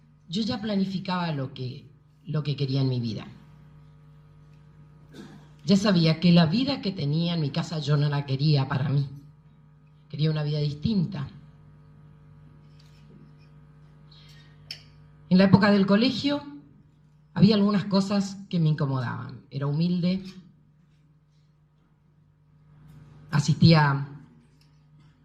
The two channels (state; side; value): identical; both; correlation 1.00